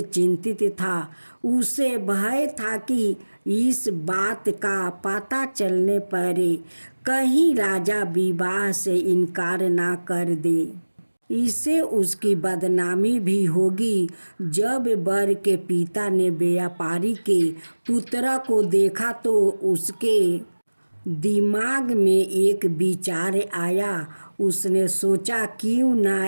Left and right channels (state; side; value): inverted; both; correlation -1.00